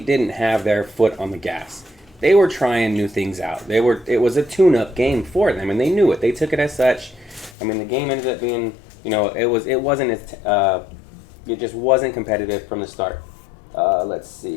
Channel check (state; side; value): drops out; right; at 7.6 s